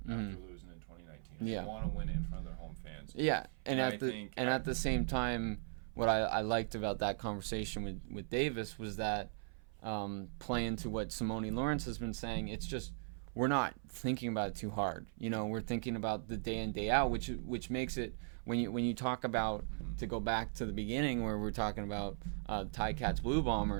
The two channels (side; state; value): left; silent; 52 dB below the other